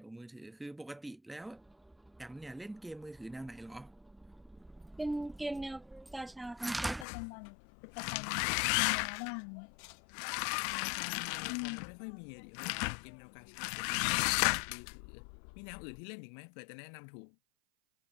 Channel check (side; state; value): right; drops out; at 7.1 s